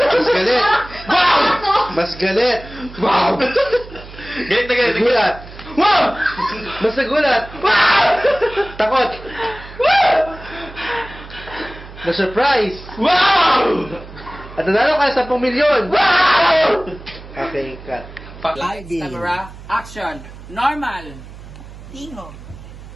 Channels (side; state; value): right; noise; hum, 16 dB below the sound